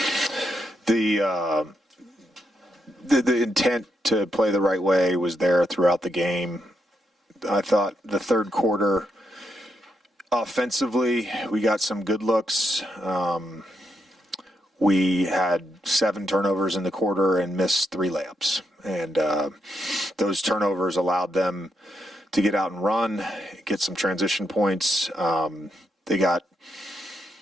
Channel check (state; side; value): normal; both; correlation 0.80